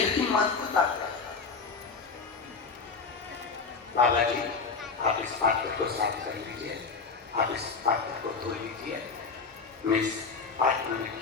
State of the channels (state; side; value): quieter; right; 4.7 dB